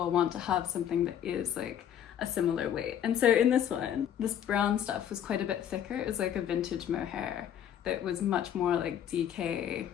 want to have something that is like a similar weight. And so in this one, this brown stuff was quite a bit thicker. It was like a vintage mohair that was much more like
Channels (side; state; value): right; quieter; 9.8 dB